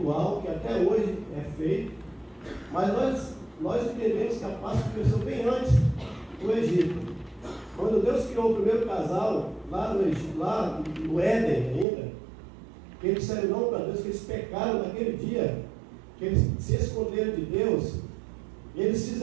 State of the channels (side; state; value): left; drops out; at 11.9 s